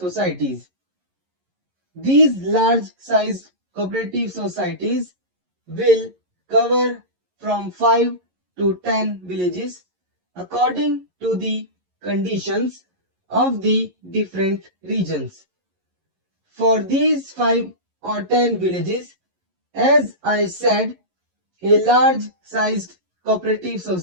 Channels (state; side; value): late; left; 11 ms